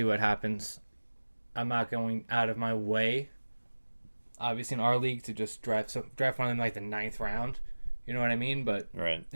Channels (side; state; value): both; inverted; correlation -1.00